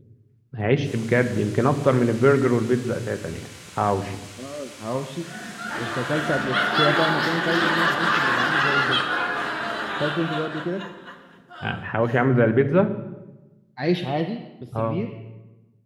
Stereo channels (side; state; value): both; identical; correlation 1.00